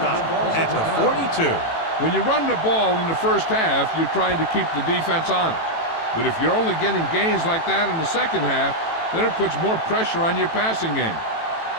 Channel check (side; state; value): right; late; 18 ms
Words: at the 42. When you run the ball in the first half, you're trying to keep the defense on it. But if you're only getting gains like that in the second half, then it puts more pressure on your passing game.